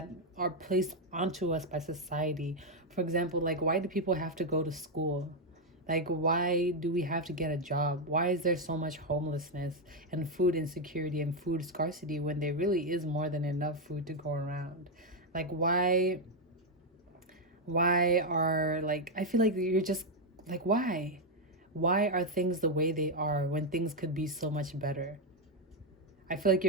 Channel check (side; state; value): both; normal; correlation 0.03